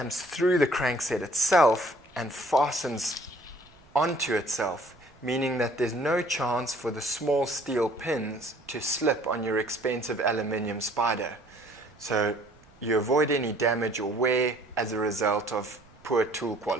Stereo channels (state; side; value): noise; right; rumble, 28 dB below the sound